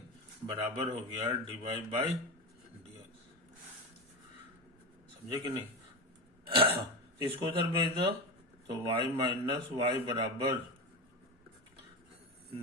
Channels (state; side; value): normal; both; correlation 0.20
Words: बराबर हो गया dy बाई dx। समझे कि नहीं? इसको उधर भेज दो तो y माइनस वाई बराबर